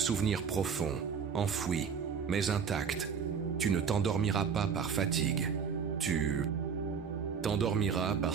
profond, enfoui, mais intact. Tu ne t'endormiras pas par fatigue. Tu t'endormiras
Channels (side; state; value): left; quieter; 6.5 dB